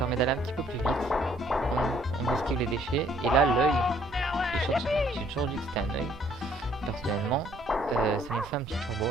d'aller un petit peu plus vite. On esquive les déchets. Et là, l'œil, j'ai toujours dit que c'était un œil. Personnellement, ça nous fait un petit turbo.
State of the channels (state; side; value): normal; both; correlation 0.63